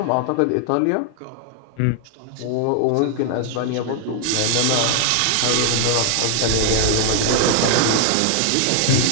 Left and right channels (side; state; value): both; different; correlation 0.00